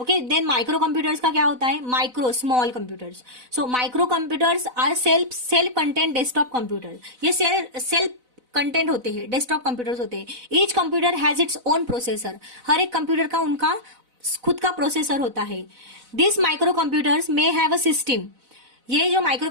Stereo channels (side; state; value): left; late; 4.0 ms